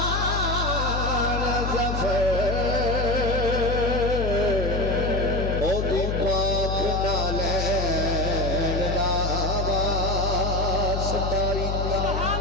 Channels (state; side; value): noise; left; hum, 1 dB below the sound